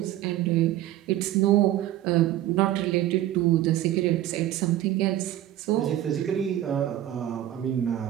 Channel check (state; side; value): quieter; left; 13.3 dB